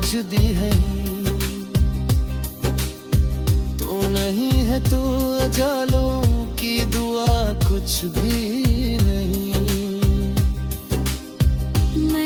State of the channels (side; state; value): both; identical; correlation 1.00